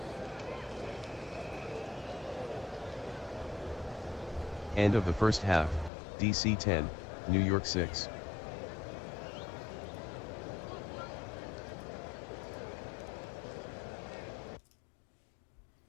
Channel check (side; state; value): right; drops out; at 5.9 s